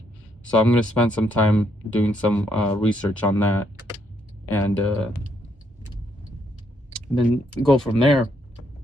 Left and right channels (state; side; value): normal; both; correlation 0.74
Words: So I'm going to spend some time doing some research on that, and then go from there.